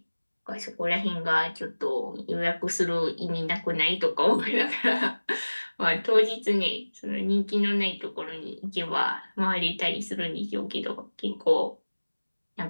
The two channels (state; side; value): inverted; both; correlation -1.00